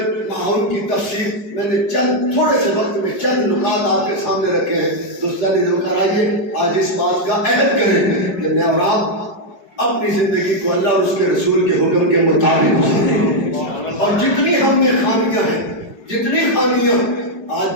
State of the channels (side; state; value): right; late; 5.0 ms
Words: معاون کی تفسیر۔ میں نے چند تھوڑے سے وقت میں چند نکات آپ کے سامنے رکھے ہیں۔ دوستان ذوکر آئیے آج اس بات کا عہد کریں کہ میں اور آپ اپنی زندگی کو اللہ اور اس کے رسول کے حکم کے مطابق گزاریں، اور جتنی ہم میں خامیاں ہیں، جتنی خامیاں، آج